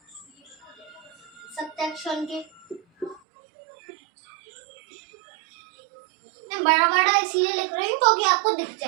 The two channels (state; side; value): drops out; left; at 3.2 s